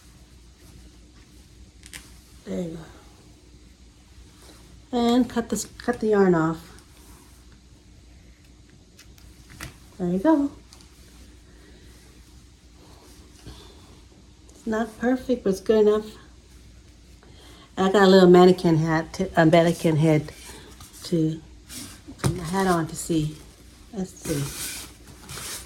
There you go. And cut the yarn off. There you go. It's not perfect, but it's good enough. I got a little mannequin head to put my hat on to see. Let's see.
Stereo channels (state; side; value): identical; both; correlation 1.00